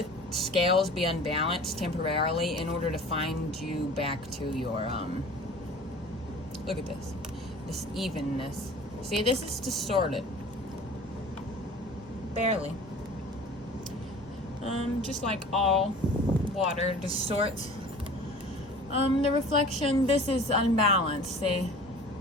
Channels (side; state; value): both; normal; correlation 0.43